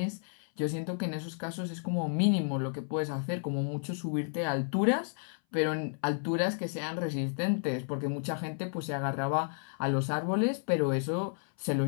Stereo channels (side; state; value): right; silent; 56 dB below the other